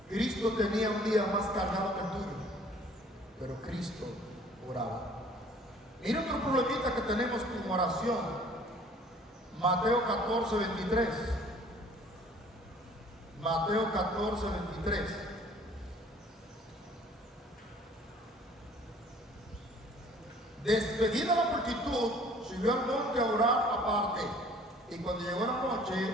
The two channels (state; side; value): normal; both; correlation 0.54